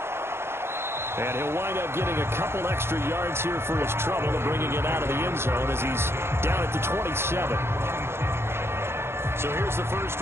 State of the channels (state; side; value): late; left; 0.12 ms